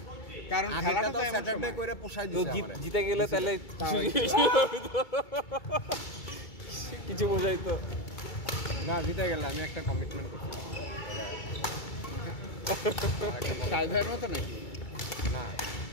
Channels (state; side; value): late; right; 2.3 ms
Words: কারণ খেলাটা তো এমন স্যাটারডে সময়। করে পোষাই তো দিছে জিতে গেলে তাহলে কিছু বোঝাই তো। না জিতে গেলে আমি একটা কমিটমেন্ট করছি সাইডের মতো নাকি? না,